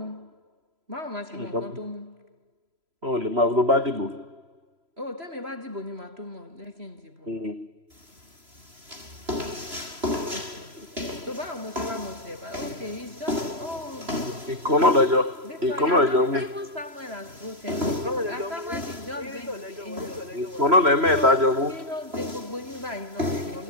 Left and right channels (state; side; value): late; left; 3.0 ms